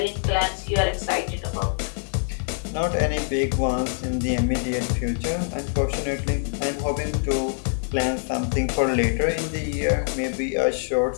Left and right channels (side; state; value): right; silent; digital silence